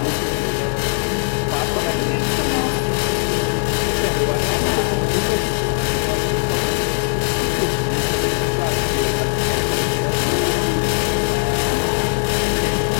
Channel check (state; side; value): silent; right; 59 dB below the other